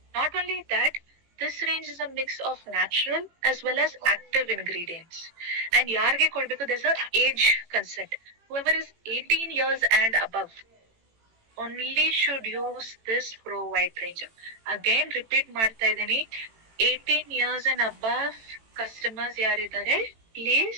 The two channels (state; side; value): late; left; 18 ms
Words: Not only that, this range is a mix of natural as well as active ingredients. And ಯಾರಿಗೆ ಕೊಡ್ಬೇಕು, there's a age consent. Whoever is 18 years and above only should use this Pro White range. Again repeat ಮಾಡ್ತಾ ಇದೀನಿ, 18 years and above customers ಯಾರಿದ್ದಾರೆ,